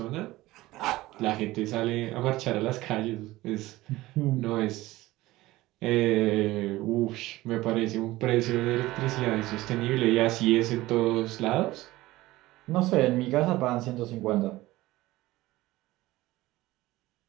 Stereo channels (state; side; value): quieter; left; 18.0 dB